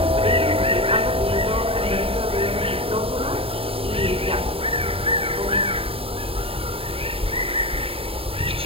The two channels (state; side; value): late; left; 0.27 ms